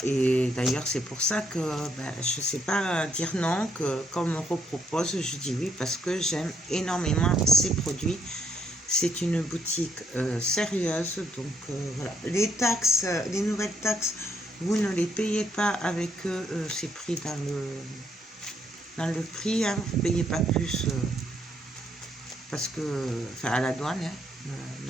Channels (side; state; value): both; normal; correlation 0.73